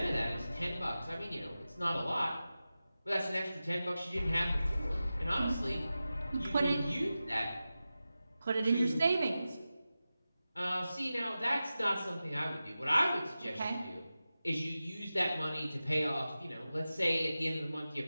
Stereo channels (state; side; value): inverted; both; correlation -0.94